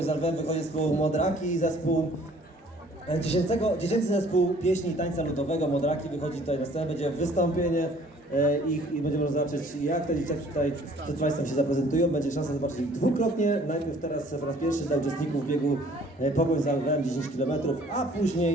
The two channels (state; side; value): normal; both; correlation 0.56